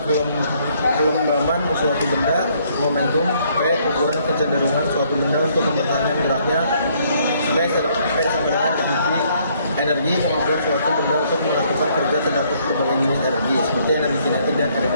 kelembaban suatu benda, momentum, P, ukuran kecenderungan suatu benda untuk mempertahankan geraknya, V sama dengan energi, kemampuan suatu benda untuk melakukan kerja terdapat berbagai jenis energi, seperti energi kinetik dan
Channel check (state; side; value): inverted; both; correlation -0.66